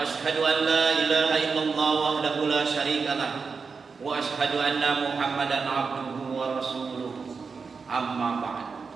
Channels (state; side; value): quieter; left; 5.1 dB